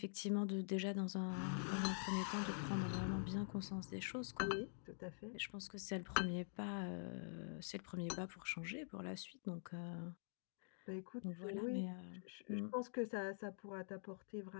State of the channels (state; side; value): silent; right; digital silence